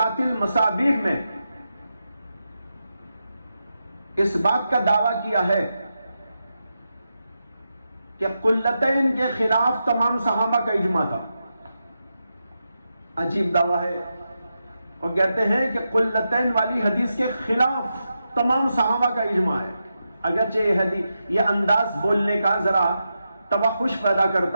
المصابیح میں اس بات کا دعویٰ کیا ہے کہ قلتین کے خلاف تمام صحابہ کا اجماع تھا۔ عجیب دعویٰ ہے، اور کہتے ہیں کہ قلتین والی حدیث کے خلاف تمام صحابہ کا اجماع ہے۔ اگرچہ یہ انداز بولنے کا ذرا توحش پیدا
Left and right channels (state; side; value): inverted; both; correlation -0.88